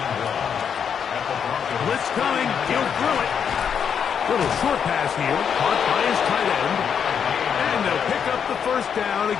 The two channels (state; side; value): quieter; right; 7.5 dB